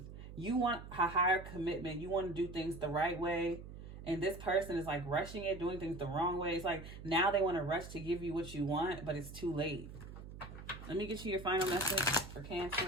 You want a higher commitment. You want to do things the right way. And this person is like rushing it, doing things the wrong way. It's like now they want to rush to give you what you want, but it's too late. Let me get you your final message for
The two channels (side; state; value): right; noise; hum, 12 dB below the sound